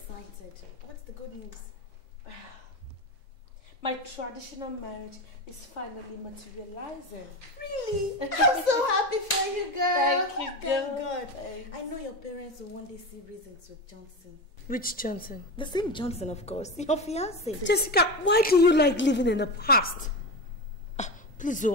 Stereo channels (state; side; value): normal; both; correlation 0.22